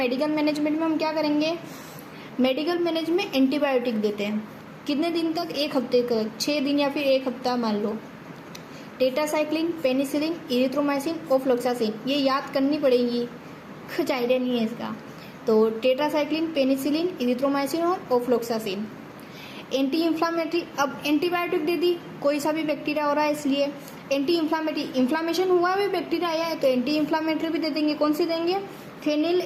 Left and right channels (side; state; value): both; identical; correlation 1.00